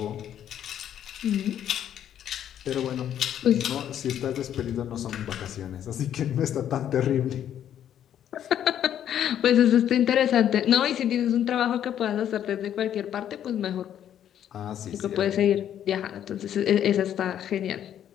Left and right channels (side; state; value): right; quieter; 10.2 dB